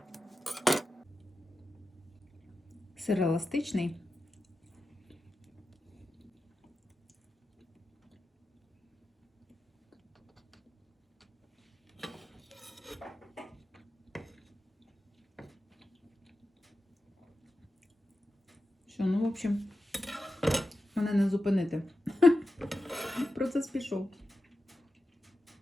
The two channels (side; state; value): both; normal; correlation 0.92